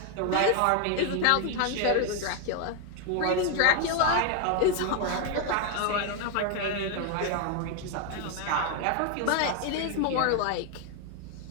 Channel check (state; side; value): different; both; correlation 0.01